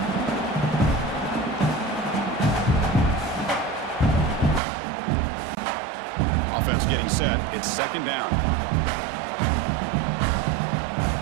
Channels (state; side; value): drops out; left; at 4.6 s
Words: Offense getting set. It's second down.